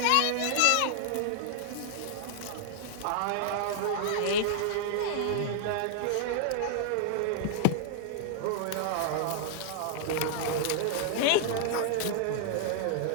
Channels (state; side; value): different; both; correlation 0.00